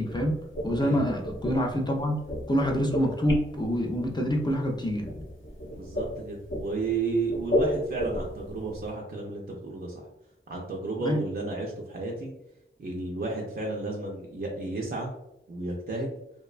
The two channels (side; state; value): both; normal; correlation 0.66